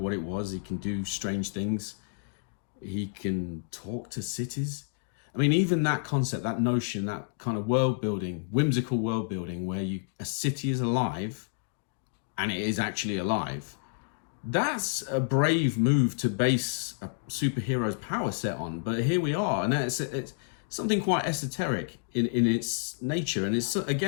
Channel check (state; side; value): silent; right; digital silence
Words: it was. He can do strange things. He can talk to cities. I mean, even that concept, that notion, that kind of world building, whimsical world building, where a city is alive, and it is actually alive. That's a brave move to base a superhero's power set on. But here we are, and it's something quite esoteric in its nature. And it's,